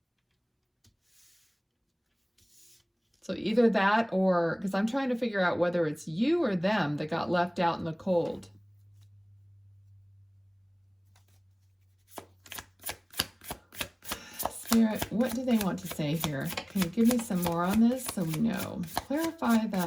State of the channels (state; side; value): identical; both; correlation 1.00